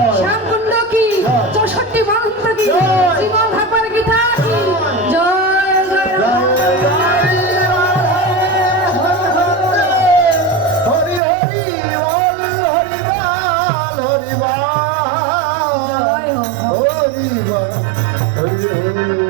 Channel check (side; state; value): left; drops out; at 11.2 s